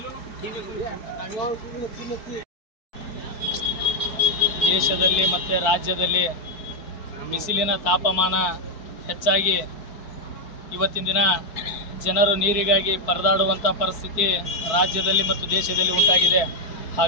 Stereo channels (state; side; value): late; right; 4.7 ms